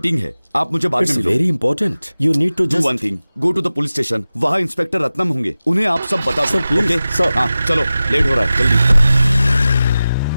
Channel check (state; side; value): inverted; both; correlation -0.95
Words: है। आप मुझे बाद में मिलो। Very important. You need to do one thing, go to the police station. वहाँ इंस्पेक्टर रत्नम होंगे, उन्हें आप सब बता सर, प्लीज। ओके? सर। हाँ चलो, लेट हो रहा है, जल्दी।